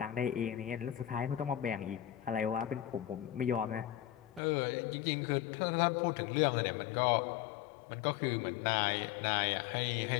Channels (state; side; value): drops out; right; at 4.4 s